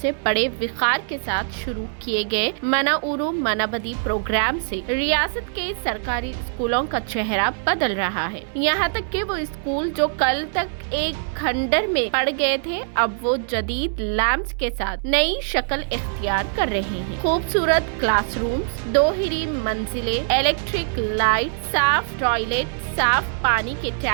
سے بڑے وقار کے ساتھ شروع کیے گئے منا اورو منا بدی پروگرام سے ریاست کے سرکاری اسکولوں کا چہرہ بدل رہا ہے۔ یہاں تک کہ وہ اسکول جو کل تک ایک کھنڈر میں پڑ گئے تھے اب وہ جدید لیمپس کے ساتھ نئی شکل اختیار کر رہے ہیں۔ خوبصورت کلاس رومز، 2 ہری منزلیں، الیکٹرک لائٹ، صاف ٹوائلٹ، صاف پانی کے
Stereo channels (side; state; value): left; silent; digital silence